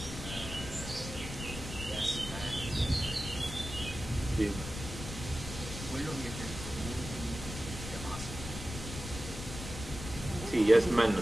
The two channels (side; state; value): left; noise; rumble, 9 dB below the sound